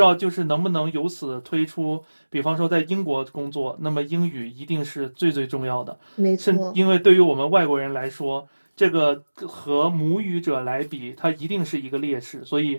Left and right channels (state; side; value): inverted; both; correlation -1.00